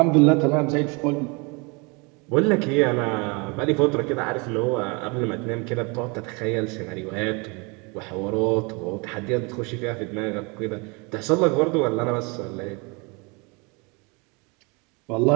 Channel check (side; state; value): left; quieter; 29.7 dB